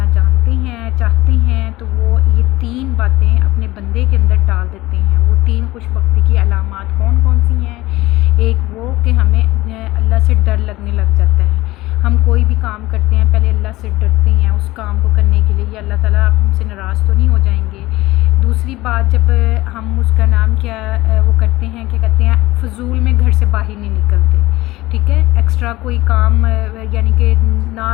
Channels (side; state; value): right; quieter; 18.5 dB